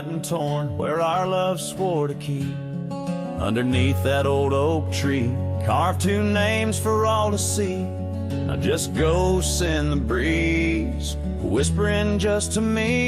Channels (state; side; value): identical; both; correlation 1.00